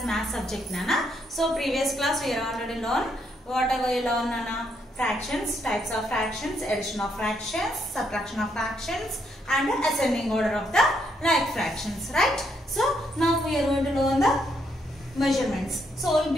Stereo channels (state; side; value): normal; both; correlation 0.75